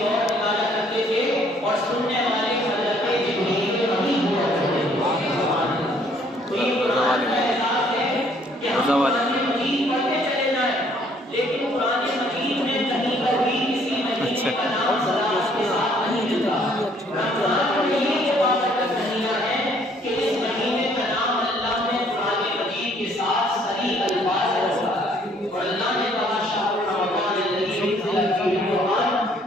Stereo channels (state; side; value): normal; both; correlation 0.63